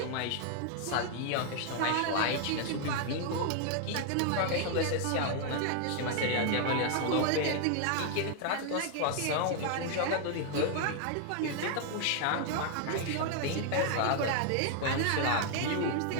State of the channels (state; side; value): different; both; correlation 0.00